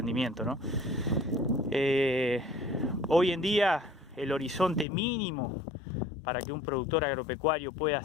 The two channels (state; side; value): drops out; right; at 4.9 s